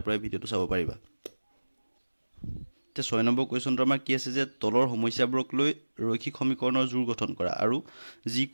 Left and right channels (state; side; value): inverted; both; correlation -1.00